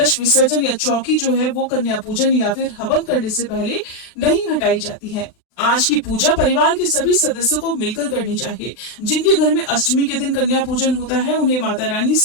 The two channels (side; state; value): right; late; 39 ms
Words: विसर्जन या चौकी जो है वो कन्या पूजन या फिर हवन करने से पहले नहीं हटाई जाती है। आज की पूजा परिवार के सभी सदस्यों को मिलकर करनी चाहिए। जिनके घर में अष्टमी के दिन कन्या पूजन होता है, उन्हें माता रानी